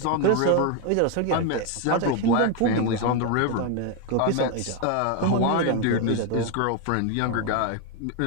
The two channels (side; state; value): both; different; correlation 0.01